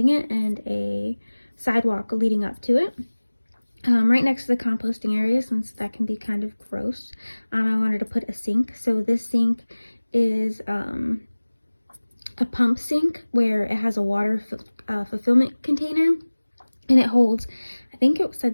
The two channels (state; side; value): inverted; both; correlation -1.00